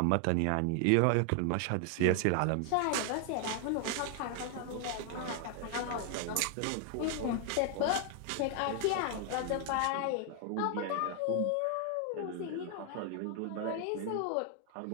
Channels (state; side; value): different; both; correlation 0.00